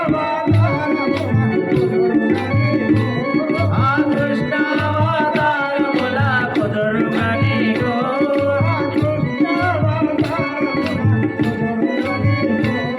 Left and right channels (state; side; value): identical; both; correlation 1.00